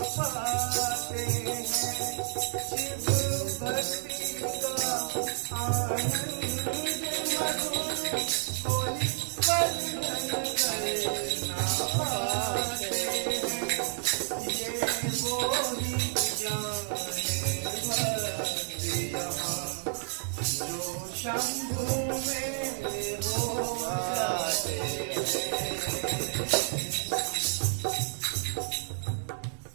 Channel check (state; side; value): silent; left; digital silence